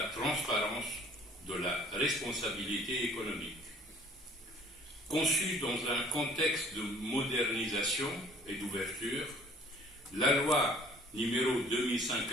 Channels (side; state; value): both; normal; correlation 0.53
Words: transparence, de la responsabilité économique. Conçue dans un contexte de modernisation et d'ouverture, la loi numéro